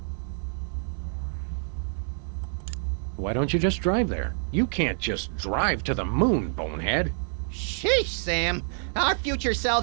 Why don't you just drive there? You can't just drive to the moon, bonehead. Sheesh, Sam. Our future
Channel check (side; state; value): left; silent; 60 dB below the other